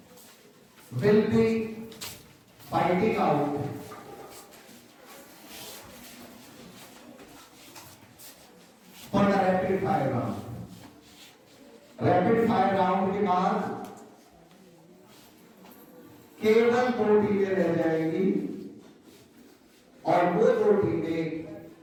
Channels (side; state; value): both; identical; correlation 1.00